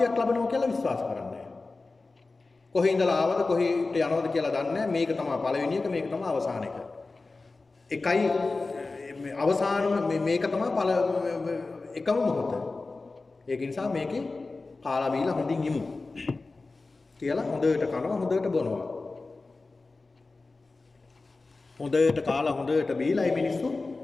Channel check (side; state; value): right; quieter; 3.6 dB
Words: ලැබෙනවා කියලා විශ්වාස කරන්නේ නැහැ. කොහේ ඉඳලා ආවද කොහෙට යනවද කියලා දන්නේ නැහැ. මේක තමයි පළවෙනි එක, මේක තමයි අවසාන එක. එකයි අවසානම මේක තමයි එකම මොහොත. ඒක නිසා මේකේ කාලා බීලා හොඳින් ඉමු. කියලා හොඳට කනවා හොඳට බොනවා. හොඳට කාලා හොඳට බීලා මේ මිනිස්සු